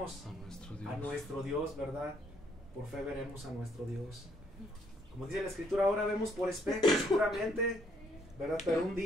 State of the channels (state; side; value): normal; both; correlation 0.68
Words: a nuestro Dios, ¿verdad? Por fe veremos a nuestro Dios. Como dice la Escritura, ahora vemos por espejo seguramente, ¿verdad? Pero un